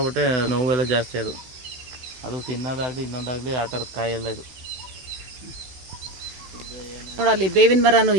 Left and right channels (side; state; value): left; late; 15 ms